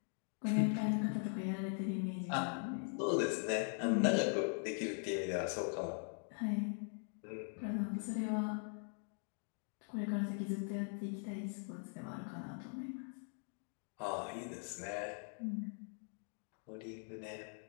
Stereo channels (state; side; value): silent; right; 50 dB below the other